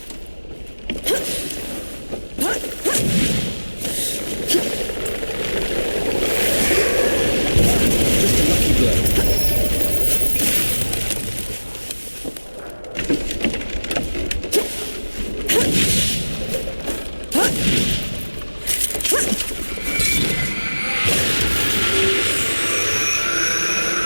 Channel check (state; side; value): inverted; both; correlation -1.00